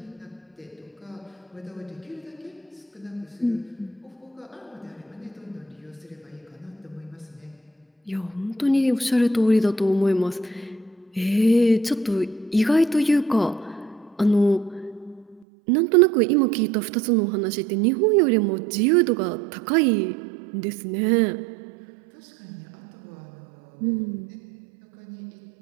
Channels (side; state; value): left; drops out; at 15.5 s